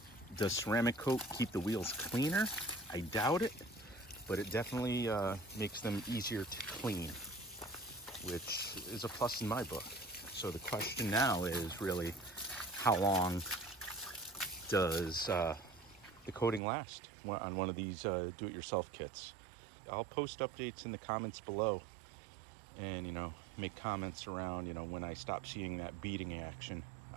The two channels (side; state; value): left; drops out; at 16.6 s